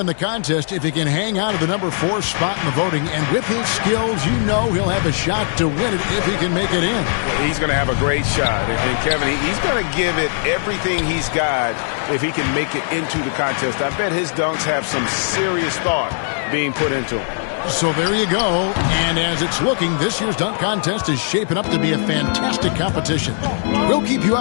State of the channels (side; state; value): right; silent; digital silence